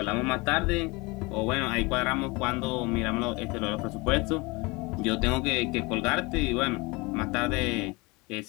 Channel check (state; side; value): quieter; right; 25.4 dB